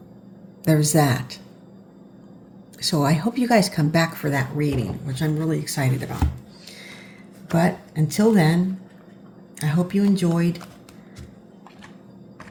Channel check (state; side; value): identical; both; correlation 1.00